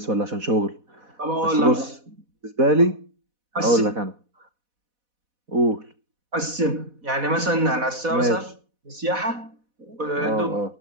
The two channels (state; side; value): late; left; 4.1 ms